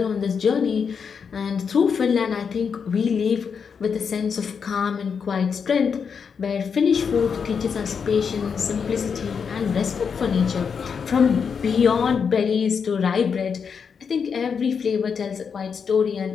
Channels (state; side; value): quieter; right; 6.3 dB